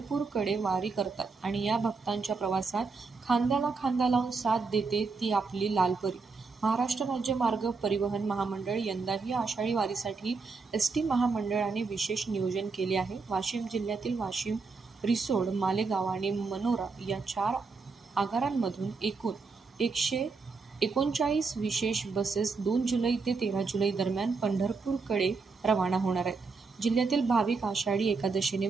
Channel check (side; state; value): left; quieter; 4.5 dB